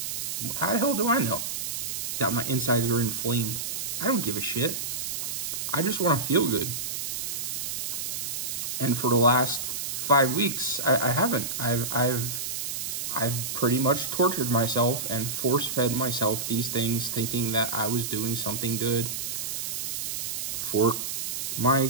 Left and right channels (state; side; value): noise; right; hiss, 3 dB below the sound